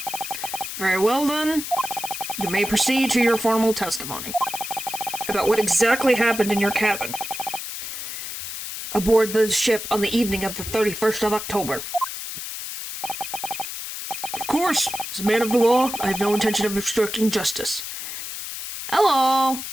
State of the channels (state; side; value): noise; left; hiss, 7 dB below the sound